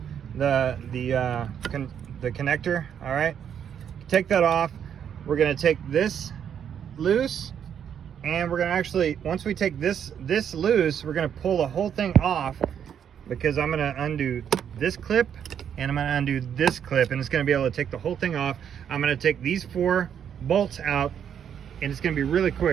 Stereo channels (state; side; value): quieter; left; 8.6 dB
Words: the connector. All right, take that off. We're gonna take this loose, and we're gonna actually, once we take this loose, we're gonna pull the whole thing off, because I'm gonna undo this clip and I'm gonna undo this clip, and it's gonna be able to take the whole thing off. I'm gonna take these 4 bolts out, and it's gonna be really